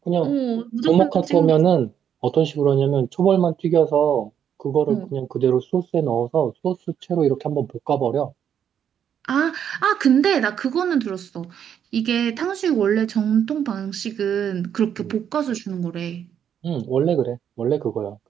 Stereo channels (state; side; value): quieter; left; 8.8 dB